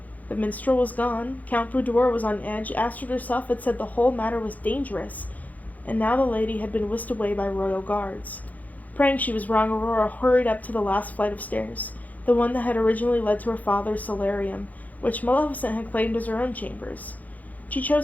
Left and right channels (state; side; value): late; right; 0.078 ms